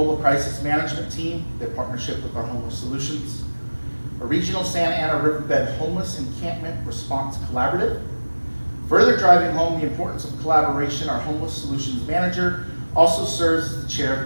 Crisis Management Team, their partnership with our Homeless Solutions, a Regional Santa Ana Riverbed Homeless Encampment Response Collaborative. Further driving home the importance of collaboration, our Homeless Solutions Manager also serves as the chair of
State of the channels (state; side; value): inverted; both; correlation -1.00